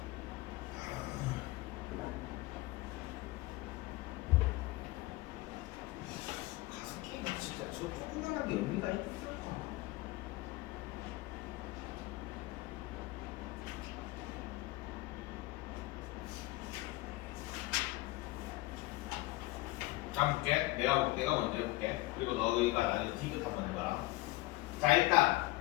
가습기가 진짜 저 조그만한 게 의미가 있을까? 자, 볼게. 내가 먼저 해볼게. 그리고 너희가 나중에 디귿 한번 해봐라. 자, 일단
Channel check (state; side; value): quieter; right; 19.7 dB